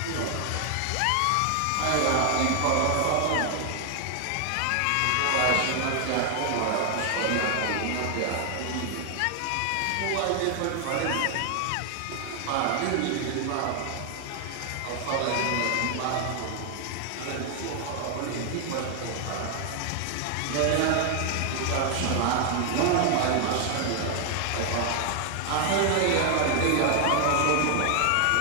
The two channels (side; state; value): both; different; correlation 0.00